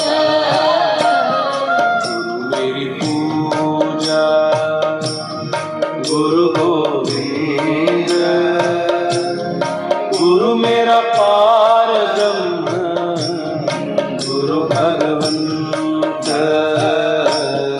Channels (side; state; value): both; identical; correlation 1.00